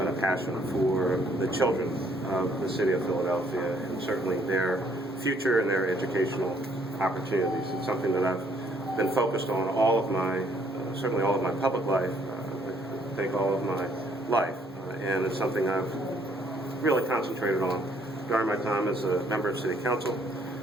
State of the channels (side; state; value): both; normal; correlation 0.66